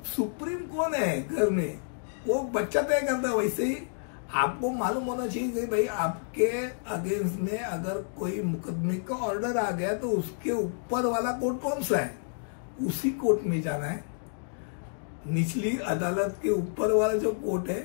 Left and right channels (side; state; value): right; silent; digital silence